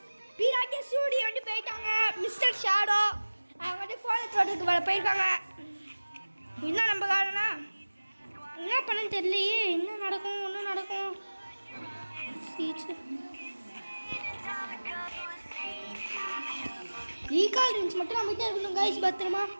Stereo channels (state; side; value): inverted; both; correlation -1.00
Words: பிராக்கே ஸ்டுடியோ வந்து போயிட்டாங்க. மிஸ்டர் ஷாடோ அவங்க வந்து ஃபோன் எடுத்துட்டு வர போயிருக்காங்க. என்ன நம்ம காரணா என்ன பண்ணன்னு தெரியலையே. என்ன நடக்கும் சீச்சு ரீகால் ரேஞ்ச் மட்டும் நம்மகிட்ட இருக்கணும் கைஸ். பத்திரமா